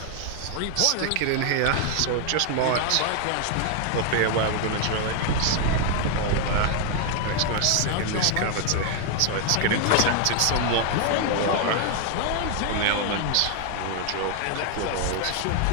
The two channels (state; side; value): different; both; correlation 0.00